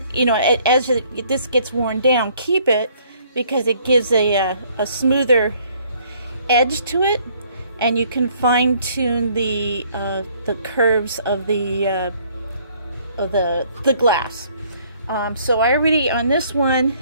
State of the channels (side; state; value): both; inverted; correlation -0.62